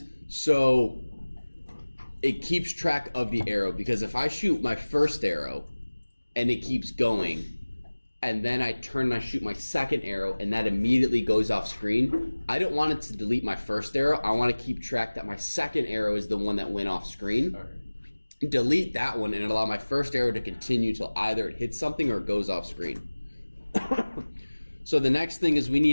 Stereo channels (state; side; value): inverted; both; correlation -1.00